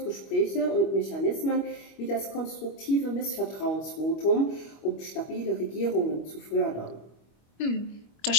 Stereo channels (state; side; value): late; right; 25 ms